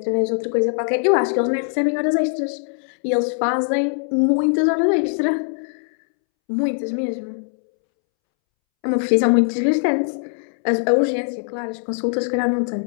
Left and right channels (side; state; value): right; silent; 65 dB below the other